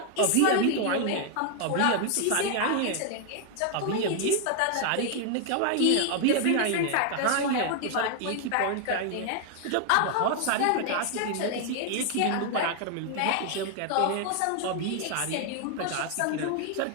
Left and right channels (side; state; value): both; different; correlation 0.00